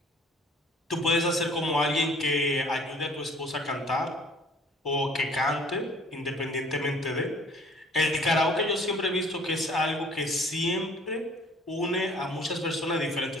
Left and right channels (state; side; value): normal; both; correlation 0.53